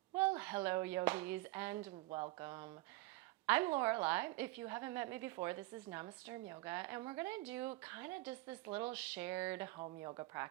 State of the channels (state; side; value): quieter; left; 20.5 dB